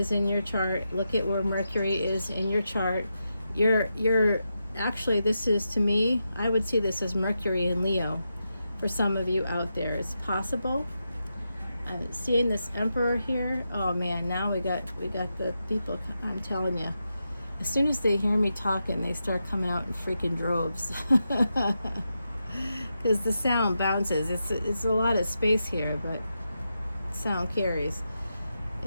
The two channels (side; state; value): both; inverted; correlation -0.87